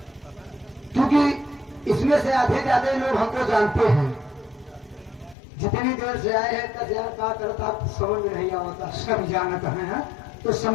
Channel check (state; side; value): drops out; right; at 5.4 s